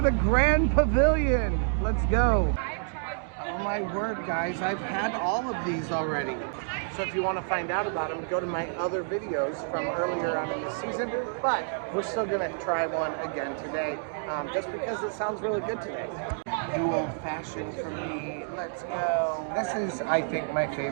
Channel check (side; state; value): left; silent; digital silence